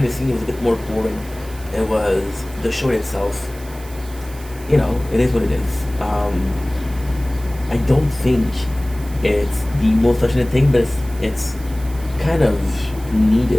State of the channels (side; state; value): right; noise; hiss, 20 dB below the sound